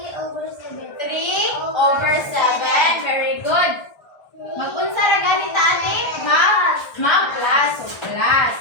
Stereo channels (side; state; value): right; late; 1.3 ms